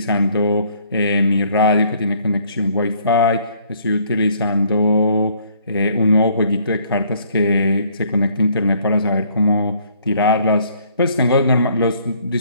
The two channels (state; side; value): inverted; both; correlation -0.62